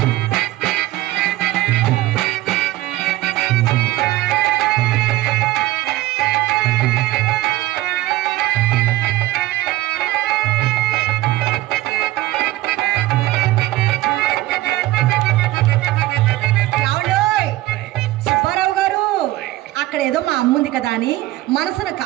ఏదో మా అమ్ముంది కదా అని మనసును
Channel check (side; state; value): left; quieter; 16.8 dB